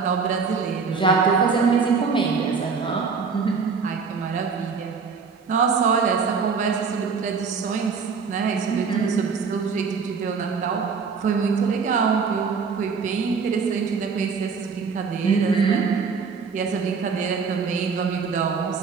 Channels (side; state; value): left; quieter; 5.4 dB